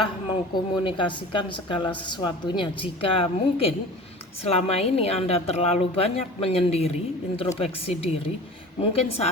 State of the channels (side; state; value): both; normal; correlation 0.39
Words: mengkomunikasikan segala sesuatunya. Jika mungkin selama ini Anda terlalu banyak menyendiri, introspeksi diri, mungkin